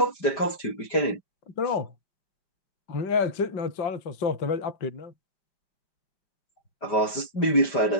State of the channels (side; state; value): right; late; 5.0 ms